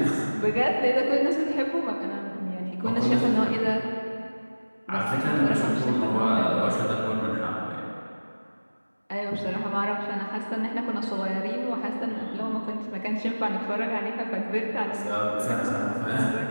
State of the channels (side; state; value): both; inverted; correlation -1.00